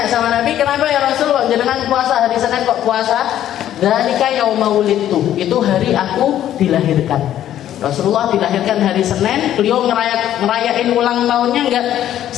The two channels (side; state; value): right; quieter; 11.6 dB